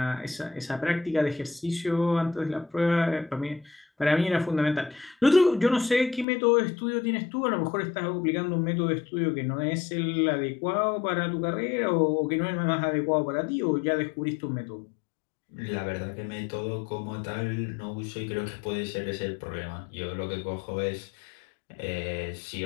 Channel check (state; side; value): drops out; right; at 6.2 s